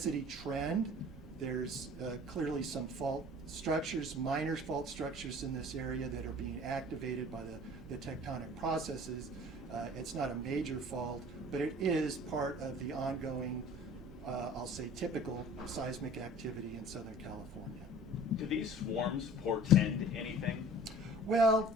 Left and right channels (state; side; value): normal; both; correlation 0.46